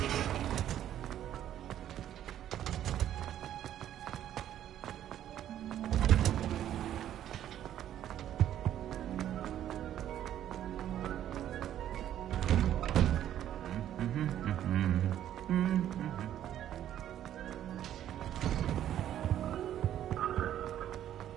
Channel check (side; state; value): left; quieter; 11.3 dB